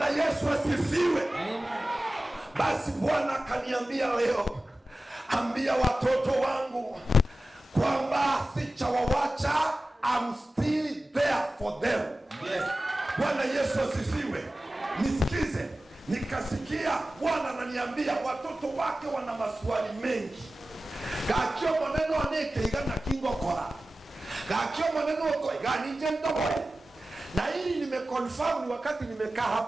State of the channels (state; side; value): normal; both; correlation 0.95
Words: Yesu asifiwe. Basi Bwana kaniambia leo, ambia watoto wangu kwamba sichawawacha, I'm still there for them. Yes. Bwana Yesu asifiwe. Nisikize, nikasikia Bwana ananiambia watoto wake wana maswali mengi. Kakio maneno aneke igana kingo kora. Kakio maneno ko igani njendo boy. Na hili nimeconfirm ni wakati nimekaa